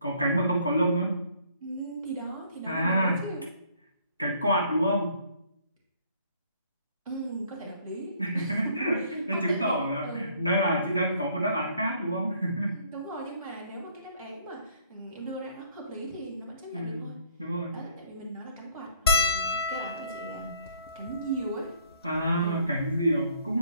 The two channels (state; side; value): inverted; both; correlation -0.63